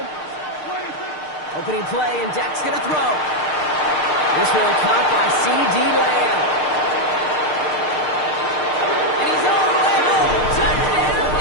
Opening play, and Dak's going to throw. This one caught by C.D. Lamb. And he's all the way home. Touchdown,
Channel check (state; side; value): late; right; 6.6 ms